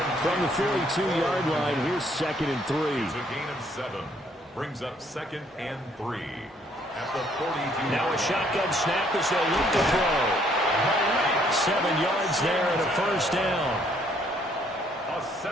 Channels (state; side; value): normal; both; correlation 0.66